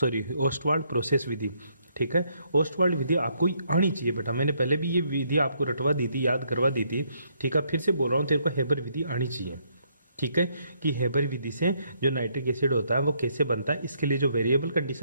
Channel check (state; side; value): inverted; both; correlation -0.72